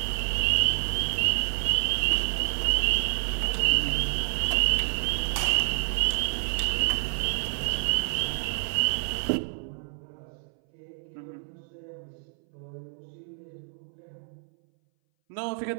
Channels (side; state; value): left; silent; 59 dB below the other